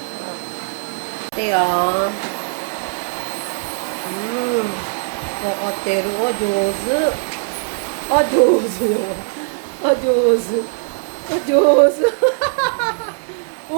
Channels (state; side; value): silent; left; 66 dB below the other